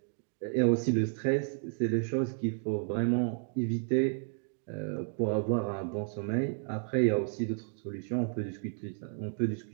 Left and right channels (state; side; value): silent; left; 56 dB below the other